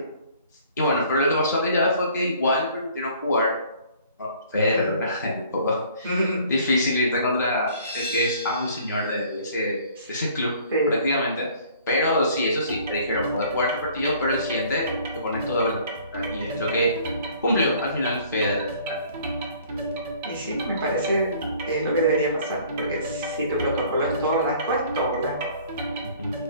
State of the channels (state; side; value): inverted; both; correlation -0.54